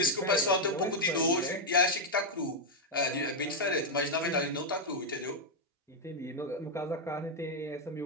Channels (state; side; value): normal; both; correlation -0.01